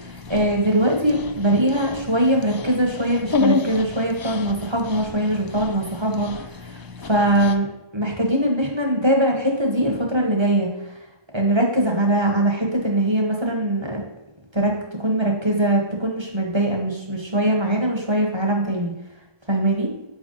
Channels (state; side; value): late; left; 1.3 ms